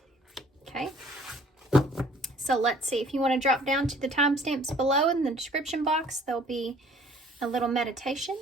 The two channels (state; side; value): normal; both; correlation 0.55